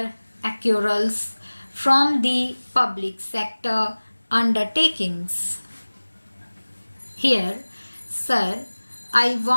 accruals from the public sector undertakings. Here, sir, I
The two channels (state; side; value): inverted; both; correlation -1.00